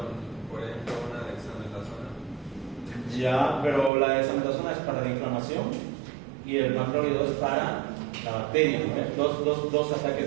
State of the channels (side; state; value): left; drops out; at 3.9 s